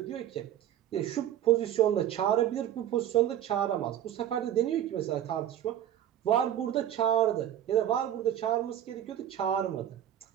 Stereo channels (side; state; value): left; quieter; 11.0 dB